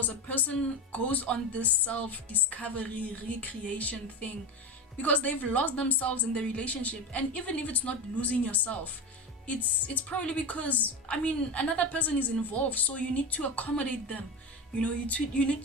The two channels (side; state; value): both; normal; correlation 0.21